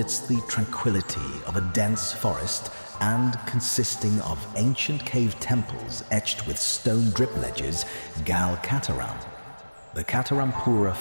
the tranquility of a dense forest and consisting of ancient cave temples etched with stone drip ledges, Gal Kataram, the Katarampura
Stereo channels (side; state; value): both; inverted; correlation -1.00